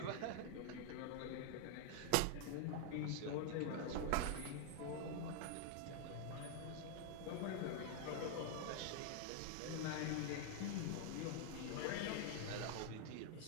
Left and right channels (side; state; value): both; different; correlation 0.00